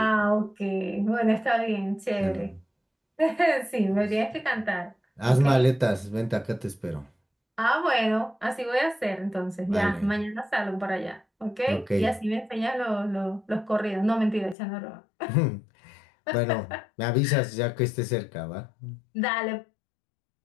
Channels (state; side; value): drops out; right; at 14.6 s